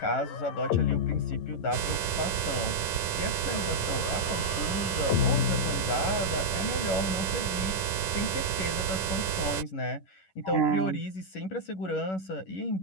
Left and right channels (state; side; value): late; right; 11 ms